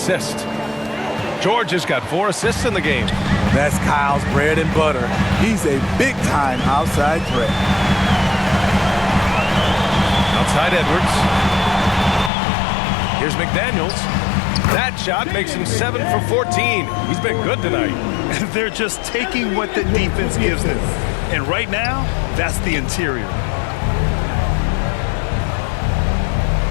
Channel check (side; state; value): right; drops out; at 12.3 s